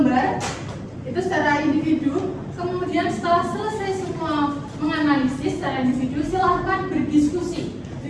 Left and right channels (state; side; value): identical; both; correlation 1.00